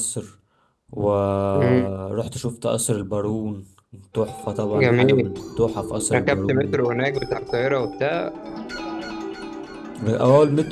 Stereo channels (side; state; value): both; identical; correlation 1.00